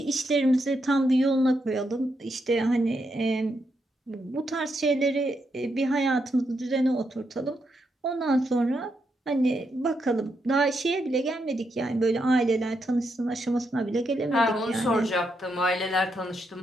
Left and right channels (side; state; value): both; normal; correlation 0.81